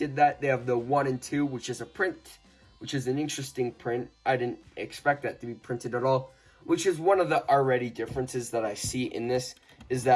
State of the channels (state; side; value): identical; both; correlation 1.00